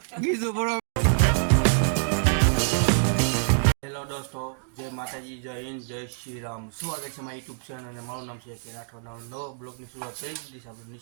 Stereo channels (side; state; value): left; silent; digital silence